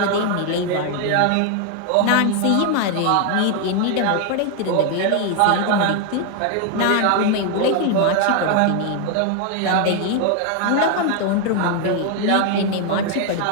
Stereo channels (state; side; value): different; both; correlation 0.01